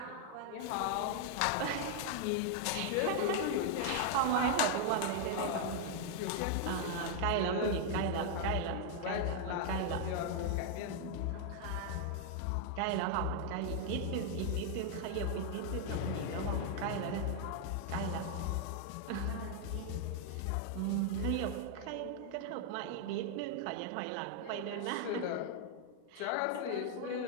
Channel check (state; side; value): different; both; correlation 0.00